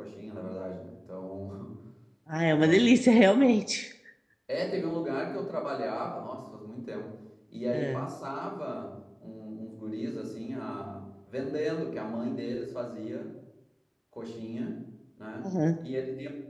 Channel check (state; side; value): identical; both; correlation 1.00